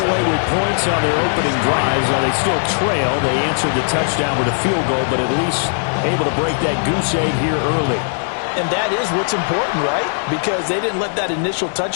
away with points on their opening drives. Now they still trail. They answered the touchdown with a field goal, but at least able to break that goose egg here early. And that is what's important, right? Because they didn't let that initial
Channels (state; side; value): silent; right; digital silence